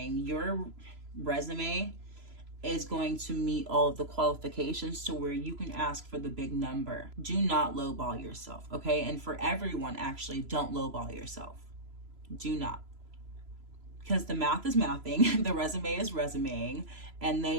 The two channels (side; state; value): left; late; 3.0 ms